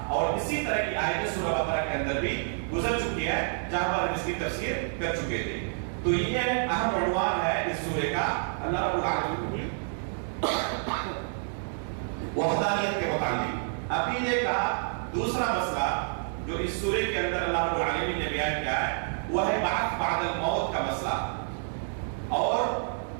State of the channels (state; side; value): silent; left; digital silence